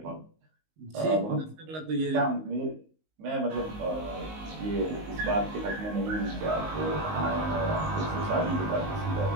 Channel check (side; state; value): left; late; 19 ms